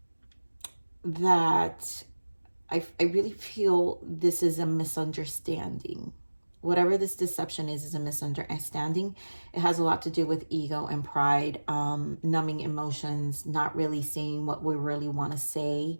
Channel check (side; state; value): both; inverted; correlation -1.00